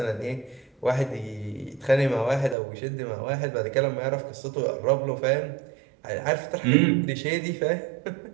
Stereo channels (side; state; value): left; drops out; at 2.6 s